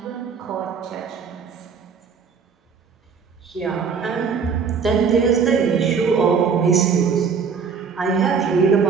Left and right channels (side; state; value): left; quieter; 5.9 dB